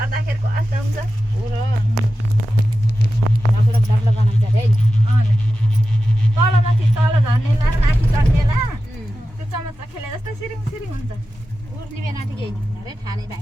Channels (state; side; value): normal; both; correlation 0.93